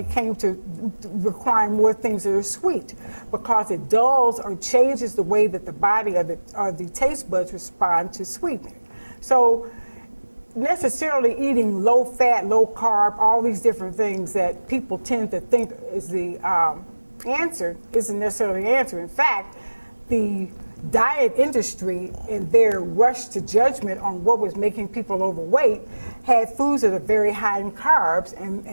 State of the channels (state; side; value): inverted; both; correlation -1.00